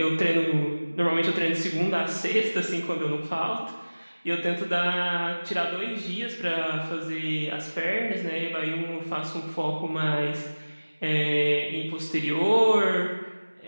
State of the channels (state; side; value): inverted; both; correlation -1.00